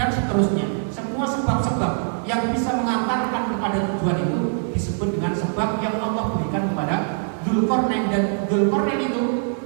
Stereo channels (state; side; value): silent; left; 61 dB below the other